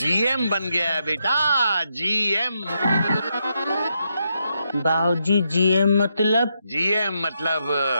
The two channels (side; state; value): both; inverted; correlation -0.81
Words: बन गया है बेटा, GM। बाबूजी GM मतलब? GM मतलब